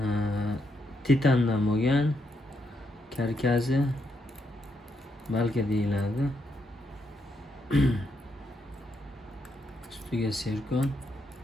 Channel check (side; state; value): both; normal; correlation 0.79